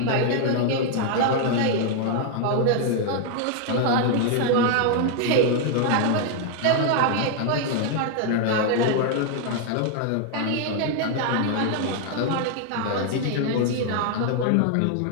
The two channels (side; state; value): both; different; correlation 0.00